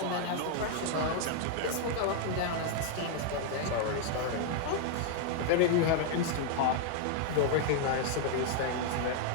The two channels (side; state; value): both; different; correlation 0.00